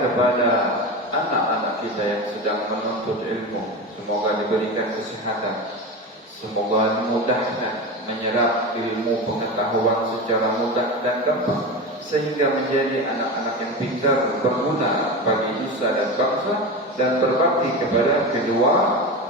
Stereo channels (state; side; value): normal; both; correlation 0.24